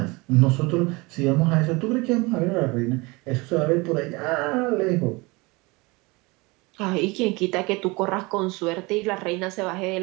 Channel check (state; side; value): quieter; left; 25.0 dB